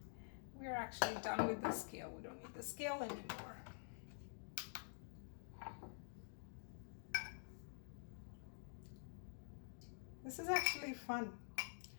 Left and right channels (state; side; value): silent; right; digital silence